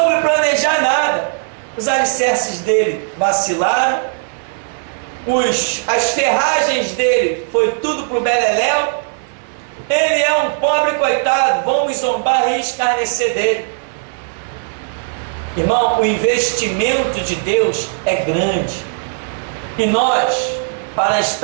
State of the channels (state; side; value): silent; left; 56 dB below the other